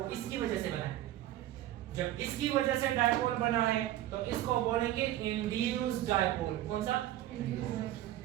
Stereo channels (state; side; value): quieter; left; 13.8 dB